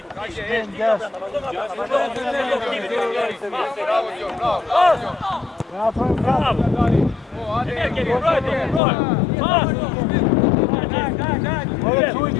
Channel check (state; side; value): drops out; right; at 8.8 s